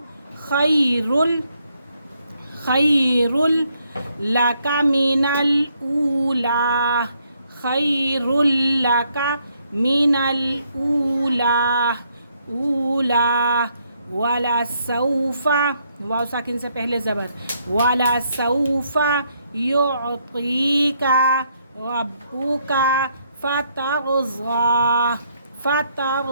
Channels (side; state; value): both; inverted; correlation -0.73